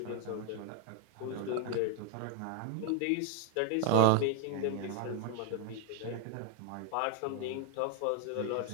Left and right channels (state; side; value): different; both; correlation 0.00